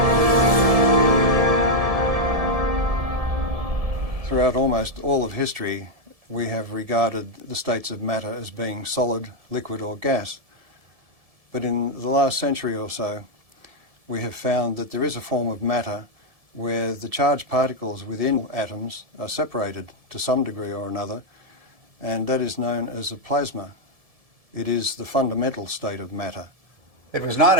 Throughout almost all of history, we have regarded the states of matter as being solid, liquid or gas. But in the last century or so, we have found that there is a form of matter where the charged particles within atoms are separated to some degree or another, and that is known as a plasma. It is the fundamental state of matter. It was not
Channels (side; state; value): left; late; 1.7 ms